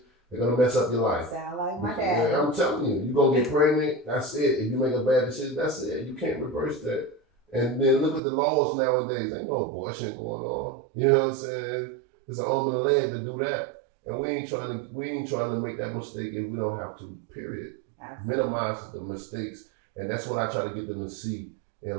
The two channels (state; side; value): drops out; left; at 8.2 s